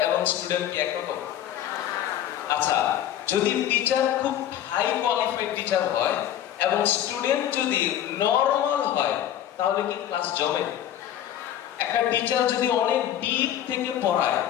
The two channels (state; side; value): quieter; right; 11.2 dB